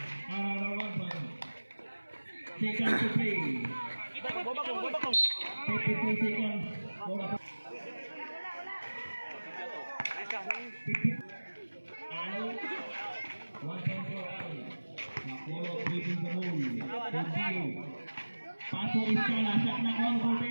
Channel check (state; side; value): inverted; both; correlation -1.00